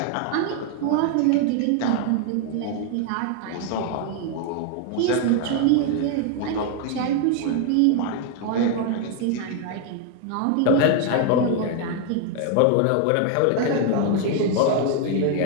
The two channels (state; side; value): different; both; correlation 0.00